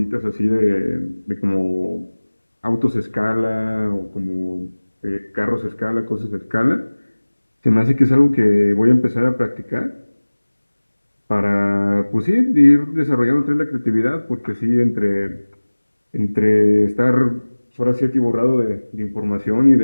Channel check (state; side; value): inverted; both; correlation -1.00